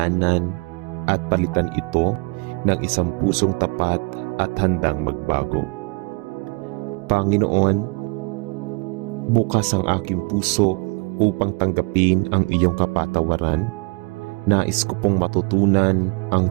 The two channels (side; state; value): left; quieter; 30.2 dB